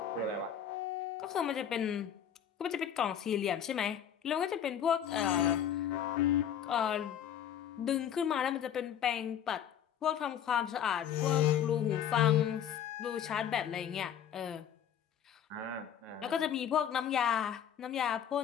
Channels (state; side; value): quieter; right; 9.2 dB